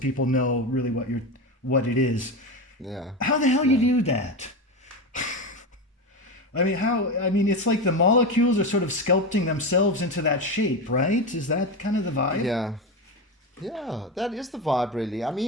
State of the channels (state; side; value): normal; both; correlation 0.19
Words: know really what it is. Yeah. How the hell you do that? It's like the molecules are sort of sculpting themselves into that shape, right? Is that kind of the vibe? Yeah. Yeah, that is the vibe, really. I